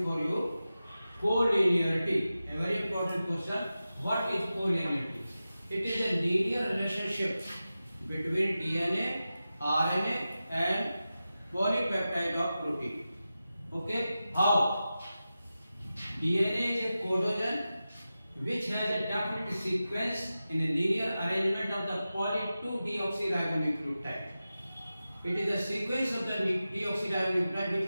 for you. Collinearity, a very important question. What is collinearity? It is a linear relationship between DNA, RNA, and polypeptide of protein. Okay, how? DNA is a codogen which has a definite sequence in a linear arrangement of the poly 2-deoxyribonucleotide. It is the sequence of the deoxyribonucleotide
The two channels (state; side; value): inverted; both; correlation -0.93